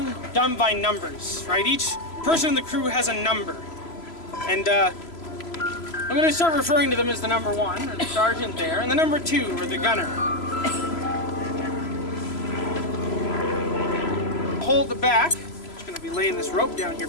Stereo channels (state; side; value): late; right; 3.0 ms